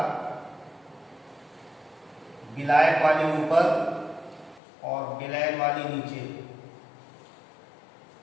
विलायक वाली ऊपर और विलयन वाली नीचे।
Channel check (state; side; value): drops out; right; at 4.6 s